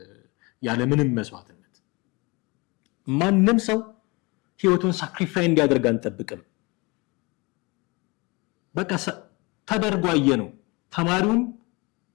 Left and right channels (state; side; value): quieter; right; 26.3 dB